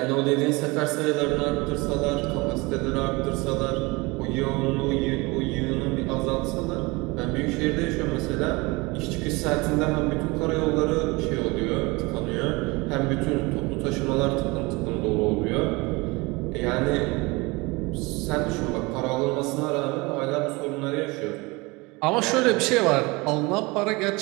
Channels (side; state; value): left; quieter; 24.7 dB